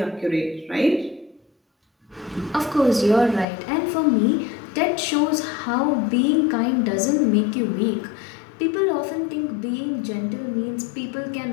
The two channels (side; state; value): right; drops out; at 3.5 s